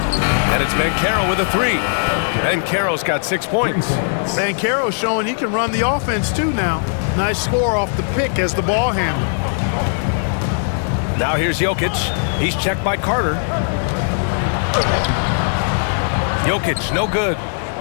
And it's Banchero with a 3. Banchero's got 6 points. Banchero's showing he can run the offense too now. Nice score off the pick as the ball handler. Now here's Jokic. He's checked by Carter. Jokic, no good.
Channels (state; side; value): silent; right; digital silence